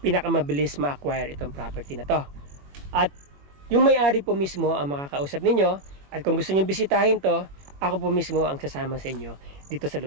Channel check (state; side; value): late; left; 21 ms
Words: pinakamabilis ma-acquire itong property na to. At yung may-ari po mismo ang makakausap ninyo, at kung gusto nyo bisitahin to, ako po mismo ang sasama sa inyo dito sa